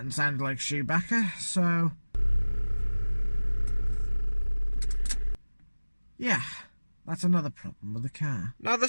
sounded like shoebacker, so yeah, that's another problem with the car. Now, the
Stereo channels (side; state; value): both; inverted; correlation -1.00